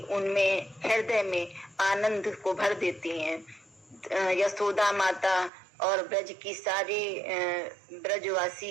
उनमें हृदय में आनंद को भर देती हैं। यशोदा माता और ब्रज की सारी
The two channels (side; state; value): left; drops out; at 5.5 s